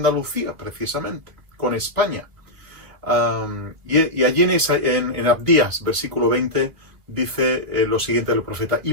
precisamente, con España. Y allí en Abdías, versículo 20, dice lo siguiente del profeta:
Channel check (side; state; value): left; late; 2.5 ms